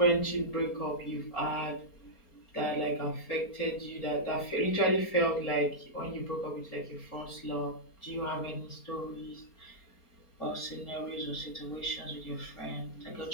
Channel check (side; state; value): right; late; 4.3 ms